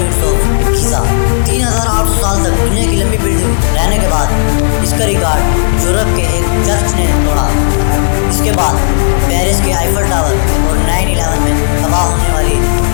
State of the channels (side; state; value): right; silent; digital silence